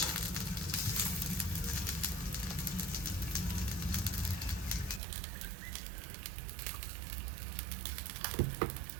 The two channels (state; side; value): drops out; left; at 5.0 s